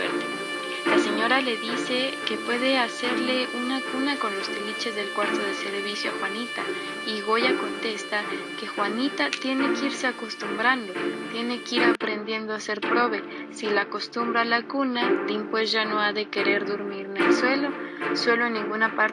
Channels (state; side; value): identical; both; correlation 1.00